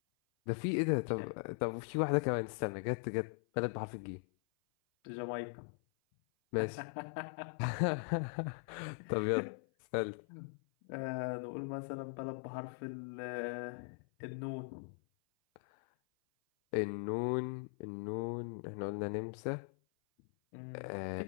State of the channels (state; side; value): silent; right; 51 dB below the other